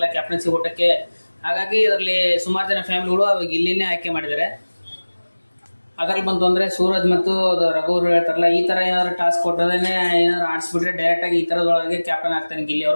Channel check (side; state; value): both; inverted; correlation -1.00